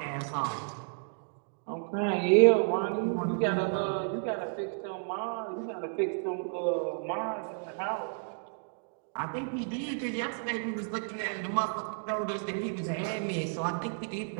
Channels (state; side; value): silent; left; digital silence